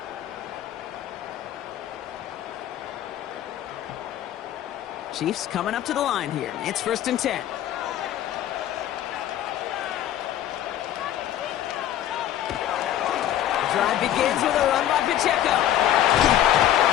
Chiefs coming up to the line here. It's 1st and 10. Drive begins with a run by Pacheco.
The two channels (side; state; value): right; quieter; 11.7 dB